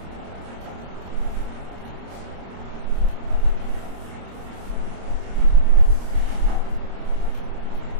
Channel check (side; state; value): left; late; 26 ms